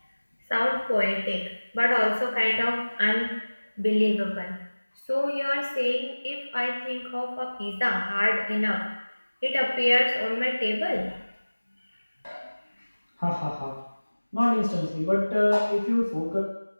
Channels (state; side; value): inverted; both; correlation -1.00